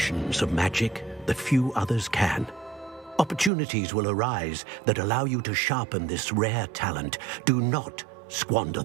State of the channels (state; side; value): drops out; left; at 3.5 s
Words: of magic that few others can. Opportunities will arise that allow you to sharpen this rare talent. Do not squander